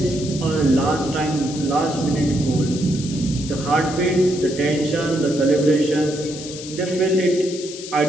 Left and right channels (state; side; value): noise; left; hiss, 12 dB below the sound